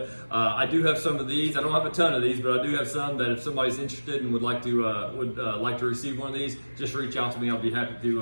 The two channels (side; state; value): both; inverted; correlation -1.00